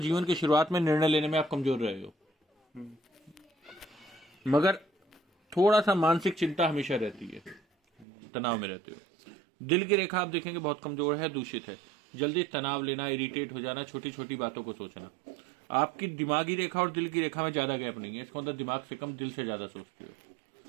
जीवन की शुरुआत में निर्णय लेने में आप कमजोर रहे हो, मगर थोड़ा सा मानसिक चिंता हमेशा रहती है, तनाव में रहते हो। दिल की रेखा आप देखेंगे बहुत कमजोर है, दूषित है, जल्दी तनाव लेना, इरिटेट हो जाना, छोटी छोटी बातों को सोचना। आपकी दिमागी रेखा और दिल की रेखा में ज्यादा गैप नहीं है, इसका मतलब दिमाग से कम दिल से ज्यादा सोचते हो,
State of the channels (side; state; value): left; drops out; at 8.1 s